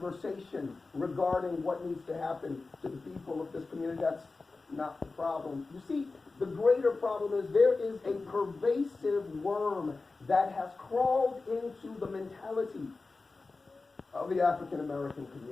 regarding what needs to happen to the people of this community. That's not the problem. You see, the greater problem is there is a pervasive worm that has crawled into the mentality of the African American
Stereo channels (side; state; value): right; quieter; 3.8 dB